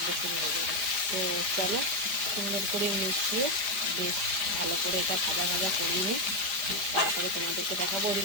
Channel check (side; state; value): left; late; 5.0 ms